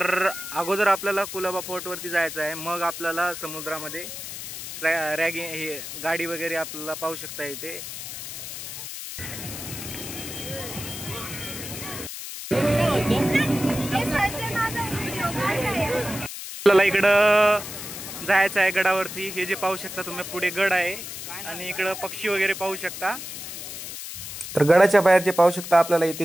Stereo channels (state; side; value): noise; left; hiss, 9 dB below the sound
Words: अगोदर आपल्याला कुलाबा फोर्टवरती जायचं आहे, मग आपल्याला समुद्रामध्ये रॅगिंग हे गाडी वगैरे आपल्याला पाहू शकता इथे. आपल्याला इकडं जायचं आहे गडावरती. हे जे पाहू शकता तुम्ही पुढे गड आहे आणि इकडं पक्षी वगैरे पाहू शकता. तर गडाच्या बाहेर जे पाहू शकता आपल्याला इथे